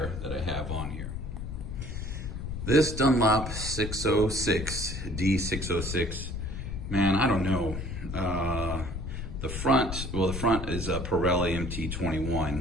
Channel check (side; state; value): left; noise; rumble, 6 dB below the sound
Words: that I have on here. This Dunlop 606, D606, man, I don't know. The front is a Pirelli